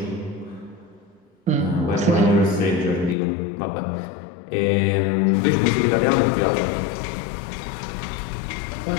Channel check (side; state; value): right; drops out; at 3.2 s